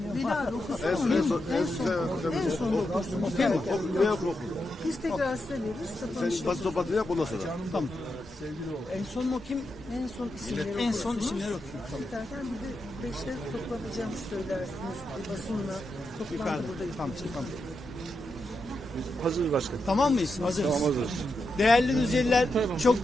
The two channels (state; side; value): normal; both; correlation 0.86